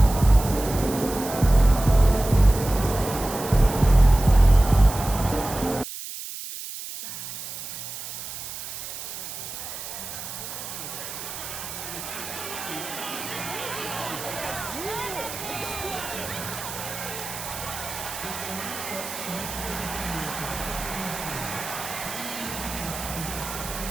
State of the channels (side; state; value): right; noise; hiss, 9 dB below the sound